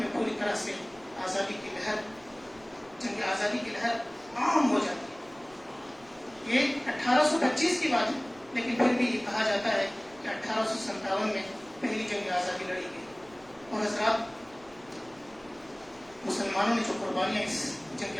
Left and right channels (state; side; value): noise; right; rumble, 27 dB below the sound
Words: پوری طرح سے جنگ آزادی کی لہر عام ہو جاتی ہے۔ یہ 1825 کی بات ہے، لیکن پھر بھی یہ کہا جاتا ہے کہ 1857 میں پہلی جنگ آزادی لڑی گئی۔ اور حضرات، مسلمانوں نے جو قربانیاں اس جنگ